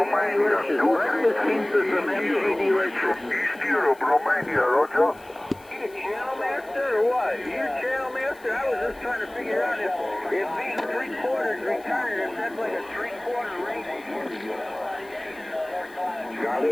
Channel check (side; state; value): left; noise; hiss, 26 dB below the sound